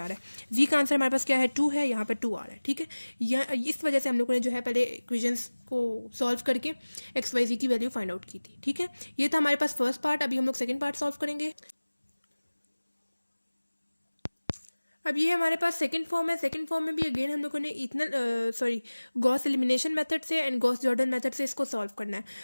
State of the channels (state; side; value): inverted; both; correlation -1.00